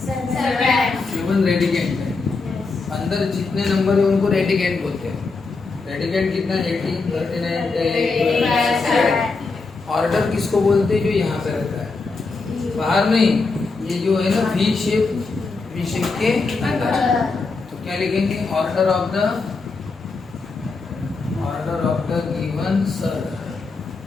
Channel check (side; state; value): right; quieter; 4.0 dB